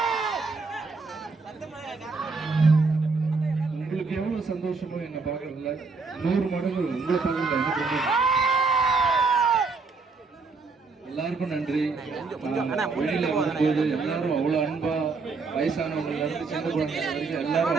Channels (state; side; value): quieter; left; 4.4 dB